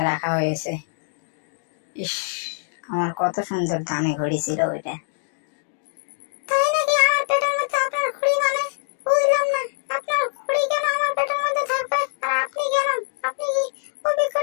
রাখা হয়েছে। ইস, আমার কত সুন্দর দামি ঘড়ি ছিল ওইটা।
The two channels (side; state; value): right; silent; digital silence